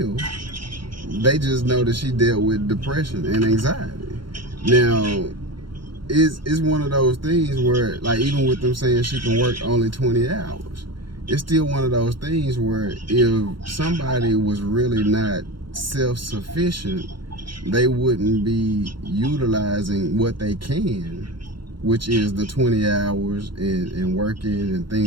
They just know that she dealt with depression and anxiety. Now, it's one of those things where, like, even with them saying she can work only 20 hours, it's still one of those things where if somebody was really not self-sufficient, they wouldn't be utilizing what they can, which is the 20 hours and working and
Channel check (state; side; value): late; left; 0.73 ms